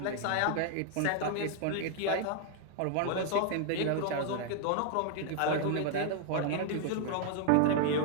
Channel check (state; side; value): different; both; correlation 0.00